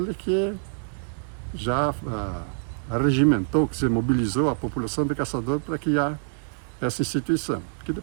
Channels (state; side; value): silent; left; 61 dB below the other